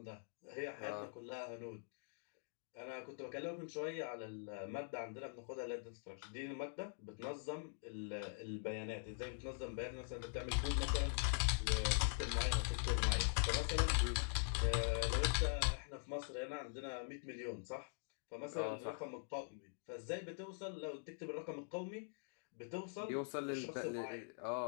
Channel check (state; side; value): silent; right; digital silence